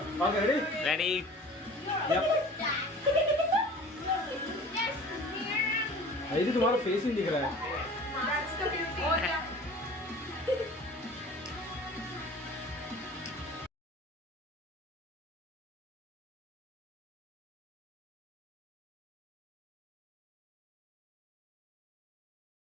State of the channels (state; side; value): normal; both; correlation 0.43